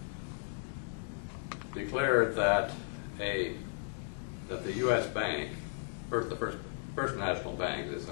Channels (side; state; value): right; silent; digital silence